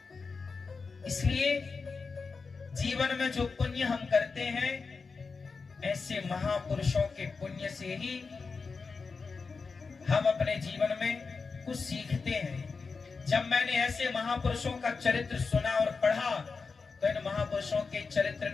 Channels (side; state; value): right; quieter; 4.7 dB